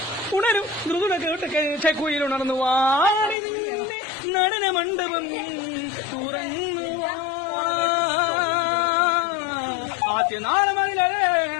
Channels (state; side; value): drops out; right; at 3.4 s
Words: കുയിലുണർന്നു വാടിന്റെ നടന മണ്ഡപം തുറന്നു ആദ്യനാളമങ്ങില